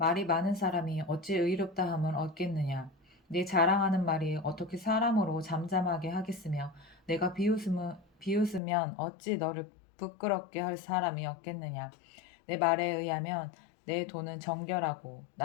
많은 사람이 어찌 의롭다 함을 얻겠느냐. 네 자랑하는 말이 어떻게 사람으로 잠잠하게 하겠으며 내가 비웃으면 어찌 너를 부끄럽게 할 사람이 없겠느냐. 내 말에 의하면 내 돈은 정결하고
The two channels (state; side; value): drops out; right; at 8.6 s